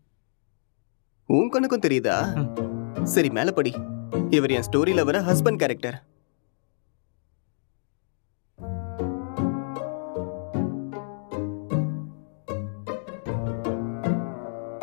உன் கண்ணுக்கும் தெரியுதா? சரி, மேல படி. இவர் என் ஸ்டோரியில வர ஹஸ்பண்ட் கேரக்டர்.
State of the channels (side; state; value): right; silent; digital silence